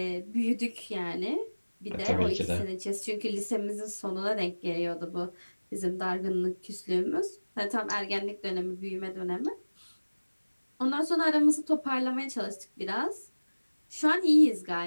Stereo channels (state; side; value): inverted; both; correlation -1.00